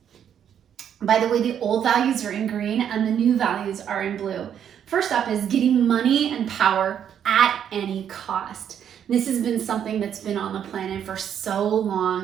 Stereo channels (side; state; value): left; quieter; 9.0 dB